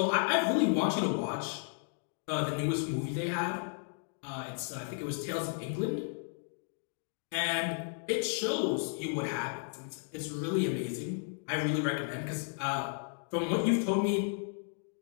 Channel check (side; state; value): right; silent; 55 dB below the other